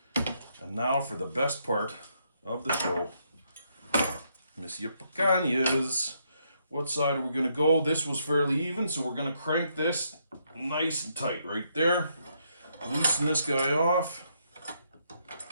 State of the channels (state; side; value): inverted; both; correlation -0.75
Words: And now for the best part of the show. Monsieur Picanhas. What side are we going to go? This was fairly even, so we're going to crank this nice and tight right there. Loosen this guy off.